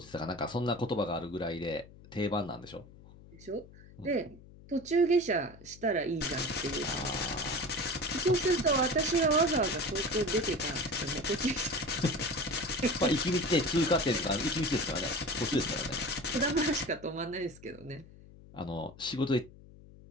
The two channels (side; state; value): left; noise; hum, 21 dB below the sound